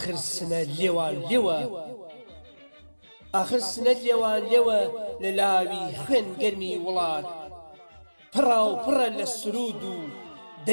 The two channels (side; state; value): both; inverted; correlation -1.00